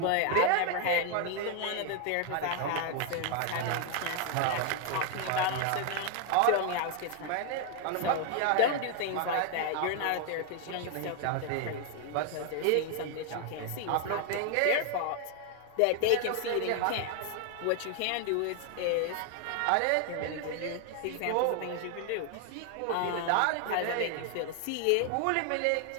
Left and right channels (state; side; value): different; both; correlation 0.00